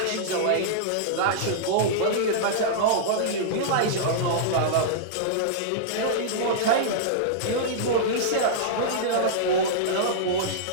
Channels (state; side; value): different; both; correlation -0.02